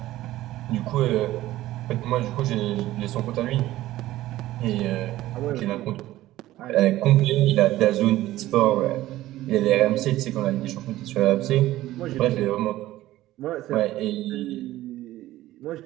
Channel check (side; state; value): left; quieter; 15.5 dB